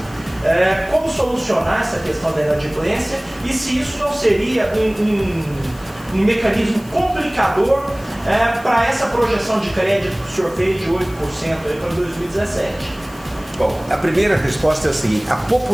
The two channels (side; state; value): left; noise; hiss, 23 dB below the sound